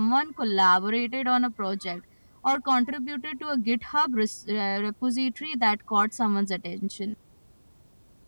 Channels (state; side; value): inverted; both; correlation -1.00